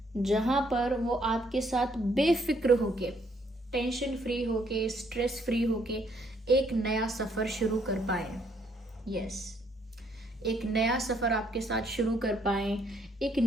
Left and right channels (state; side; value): normal; both; correlation 0.68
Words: जहां पर वो आपके साथ बेफिक्र होके, टेंशन फ्री होके, स्ट्रेस फ्री होके एक नया सफ़र शुरू कर पाए। यस, एक नया सफ़र आपके साथ शुरू कर पाए, एक